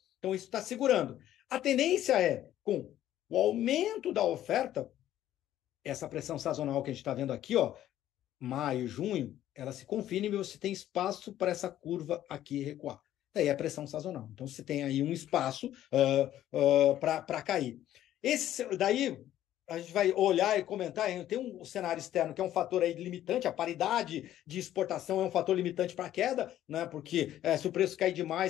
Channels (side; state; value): right; quieter; 12.5 dB